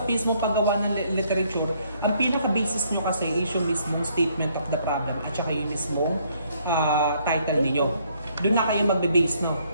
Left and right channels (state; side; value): inverted; both; correlation -0.67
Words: mismong paggawa ng literature, ang pinaka-basis nyo kasi is yung mismong statement of the problem at saka yung mismong title ninyo. Doon na kayo magbe-base, no?